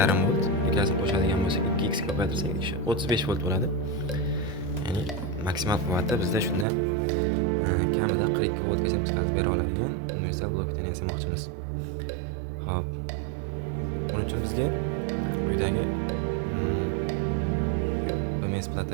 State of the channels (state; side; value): drops out; left; at 6.7 s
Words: volt ikkasini qo'shadigan bo'lsak 2x ko'paytirsak 35 volt bo'ladi. Ya'ni maksimal quvvati bizda shunda kamida 42 voltgacha chiqarib bera oladigan universal blok tenni yasamoqchimiz. Xo'p. Buning uchun bizga quyidagi BMS